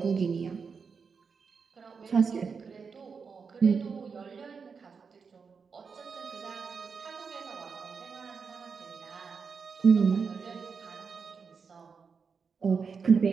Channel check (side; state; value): left; quieter; 5.5 dB